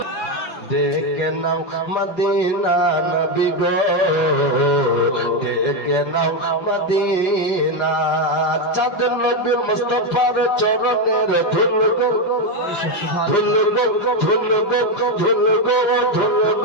ডেকে নাও মদিনা নবী গো ডেকে নাও মদিনা চাঁদ নবী মুস্তাফার চরণের ধুল গো ধুল গো ধুল গো ধুল গো ধুল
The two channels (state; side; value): late; right; 5.5 ms